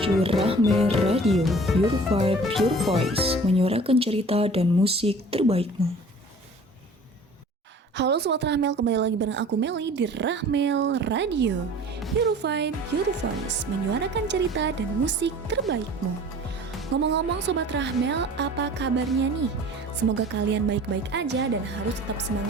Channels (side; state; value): both; normal; correlation 0.46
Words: Rahme Radio, Your Vibe, Your Voice, menyuarakan cerita dan musik terbaikmu. Halo Sobat Rahmel, kembali lagi bareng aku Meli di Rahmel Radio, Your Vibe, Your Voice, menyuarakan cerita dan musik terbaikmu. Ngomong-ngomong Sobat Rahmel, apa kabarnya nih? Semoga kalian baik-baik aja dan harus tetap